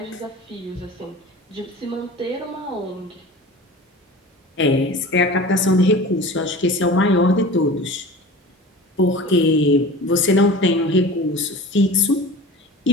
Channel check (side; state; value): both; normal; correlation 0.37